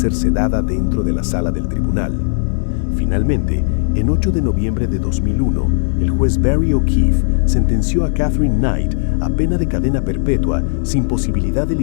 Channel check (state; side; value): silent; right; digital silence